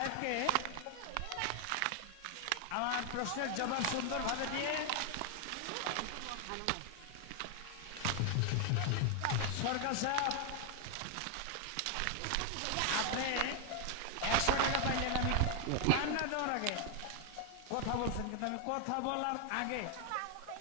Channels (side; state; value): both; different; correlation 0.00